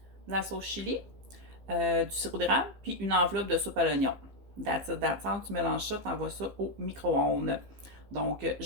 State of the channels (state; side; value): late; left; 15 ms